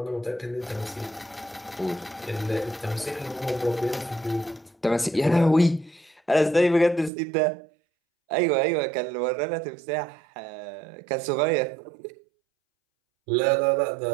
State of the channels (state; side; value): drops out; left; at 7.1 s